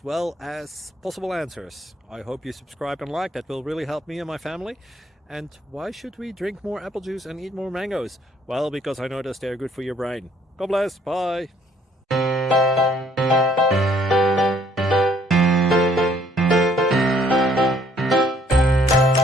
well as possible answers. I hope you subscribe and like, that will really help me and my family. And why should we drink more apple juice and eat more mangoes? Well, because I noticed they're good for your brain. God bless, bye!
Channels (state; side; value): normal; both; correlation 0.63